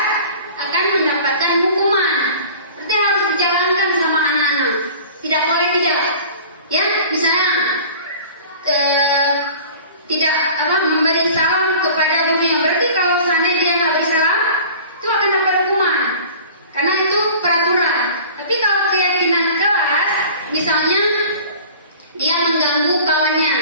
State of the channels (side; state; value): both; inverted; correlation -0.43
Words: akan mendapatkan hukuman. Berarti harus dijalankan sama anak-anak. Tidak boleh tidak ya. Misalnya tidak memberi salam kepada gurunya, berarti kalau seandainya dia nggak beri salam itu akan dapat hukuman karena itu peraturan. Tapi kalau keyakinan kelas, misalnya dia mengganggu kawannya,